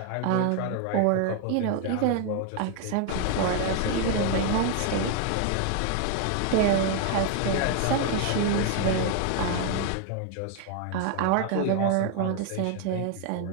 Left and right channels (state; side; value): different; both; correlation 0.00